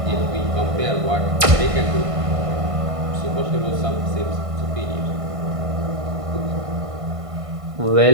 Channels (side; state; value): left; late; 1.5 ms